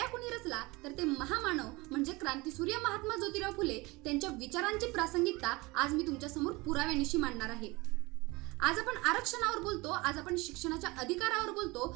कुणी रचला तर ते महामानव म्हणजे क्रांतीसूर्य महात्मा ज्योतिराव फुले. त्यांच्या विचारांची प्रासंगिकता आज मी तुमच्यासमोर पुराव्यानिशी मांडणार आहे. आज आपण आरक्षणावर बोलतो, आज आपण शिक्षणाच्या अधिकारावर बोलतो,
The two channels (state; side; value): quieter; left; 23.5 dB